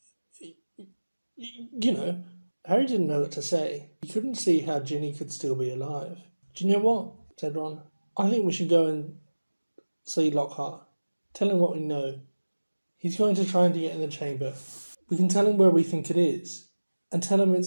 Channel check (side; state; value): both; inverted; correlation -1.00